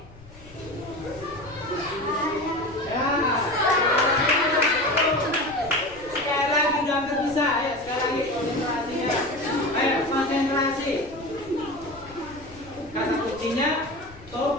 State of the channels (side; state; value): left; noise; rumble, 21 dB below the sound